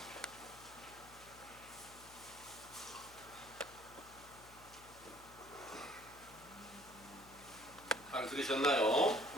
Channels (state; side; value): noise; left; hum, 21 dB below the sound